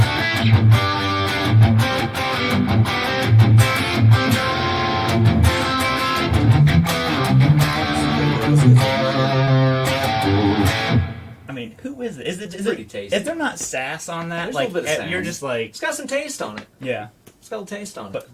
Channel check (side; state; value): both; identical; correlation 1.00